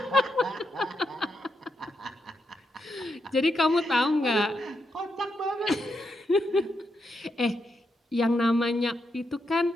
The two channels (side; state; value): both; normal; correlation 0.82